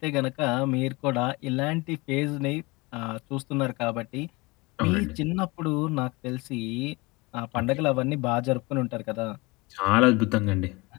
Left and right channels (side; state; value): right; quieter; 25.0 dB